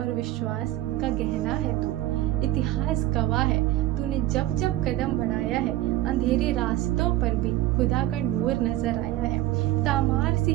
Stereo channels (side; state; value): left; quieter; 15.1 dB